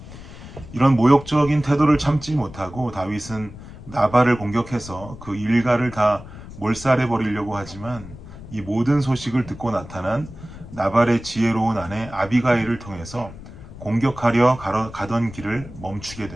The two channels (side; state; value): left; noise; rumble, 15 dB below the sound